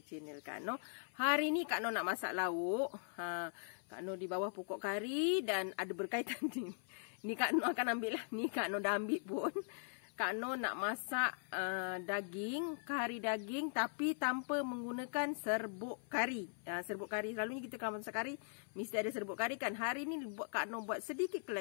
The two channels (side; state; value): right; silent; 51 dB below the other